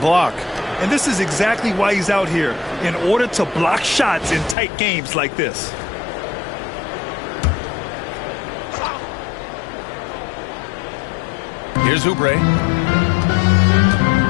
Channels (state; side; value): drops out; right; at 4.5 s